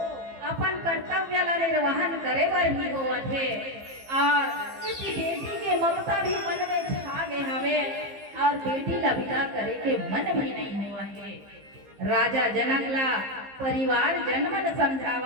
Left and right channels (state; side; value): late; left; 15 ms